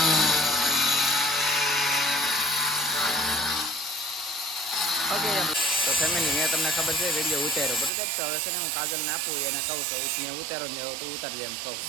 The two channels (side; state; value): left; drops out; at 7.9 s